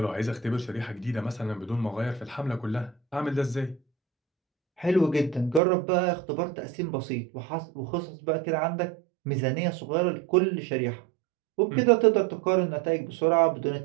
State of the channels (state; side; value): drops out; left; at 5.6 s